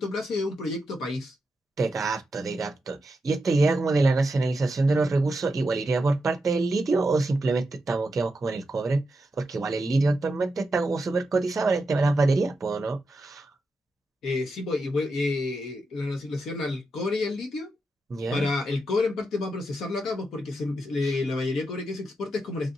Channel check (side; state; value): both; normal; correlation 0.86